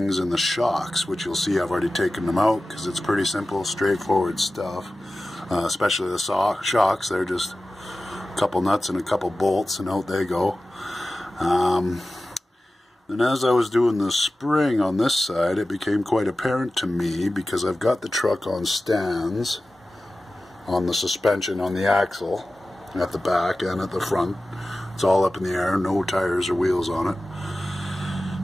and the shocks, which you'll see I've already taken them out because it's pretty simple, straightforward stuff. Especially the shocks, they're just a couple nuts and a couple bolts and out they go. And as I was doing the spring on this side, it became quite apparent to me because I've got the truck on stands on the suspension on the axle at the back and at the front. It's all up in the air, no tires or wheels on it.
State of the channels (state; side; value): normal; both; correlation 0.95